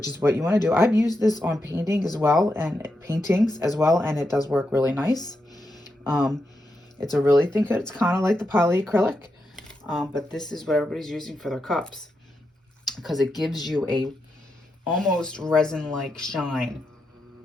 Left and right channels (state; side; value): normal; both; correlation 0.85